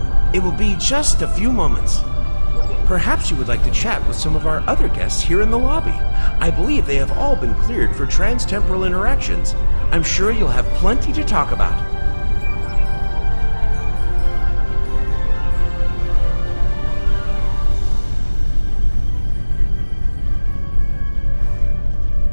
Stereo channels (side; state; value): both; inverted; correlation -1.00